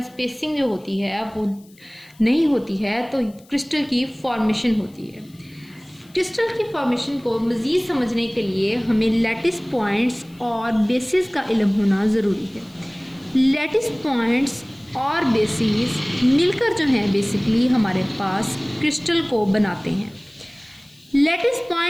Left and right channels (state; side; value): noise; left; hiss, 29 dB below the sound